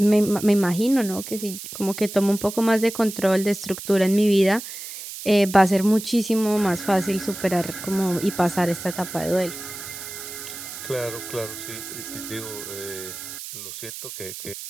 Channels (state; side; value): noise; right; hiss, 10 dB below the sound